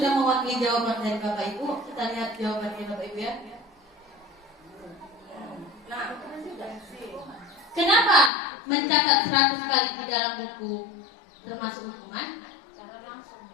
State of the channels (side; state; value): right; drops out; at 8.3 s